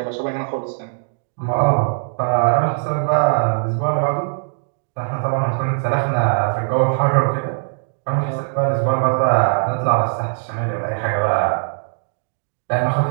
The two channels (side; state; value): left; silent; digital silence